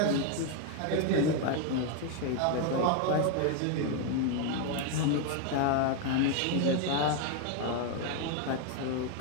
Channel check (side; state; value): both; different; correlation 0.01